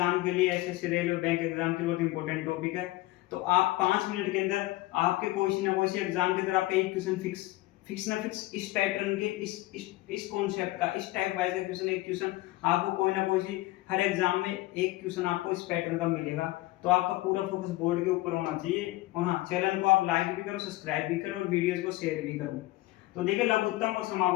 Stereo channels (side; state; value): right; quieter; 18.7 dB